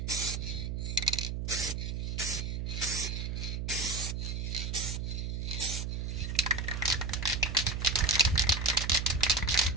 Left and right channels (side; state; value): right; noise; hum, 2 dB below the sound